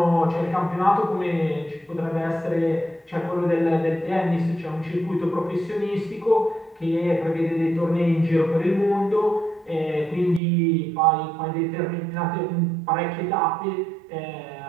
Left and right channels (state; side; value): drops out; left; at 10.4 s